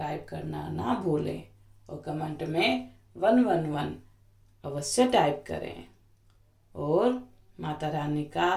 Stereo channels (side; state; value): both; identical; correlation 1.00